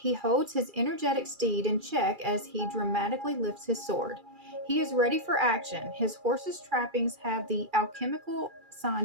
holds his energetic steed in check as he dramatically lifts his sword. He is ready for action. His horse's trappings have the alchemical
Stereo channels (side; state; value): left; late; 2.4 ms